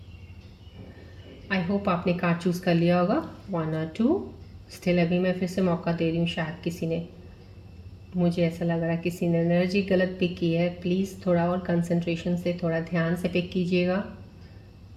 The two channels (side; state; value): both; identical; correlation 1.00